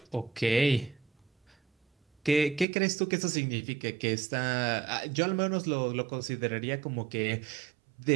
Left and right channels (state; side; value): drops out; left; at 2.7 s